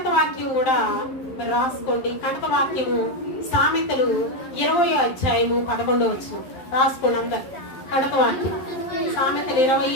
వాక్యం కూడా మరి రాసుకోండి. కంటక వాక్యము సామెతలు 20వ అధ్యాయము 11 రాసుకోండి అందరు. కంటక వాక్యం సామెతలు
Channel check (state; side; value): late; right; 11 ms